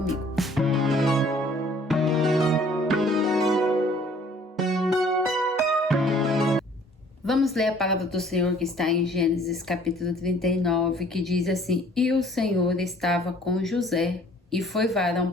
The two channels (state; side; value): normal; both; correlation 0.56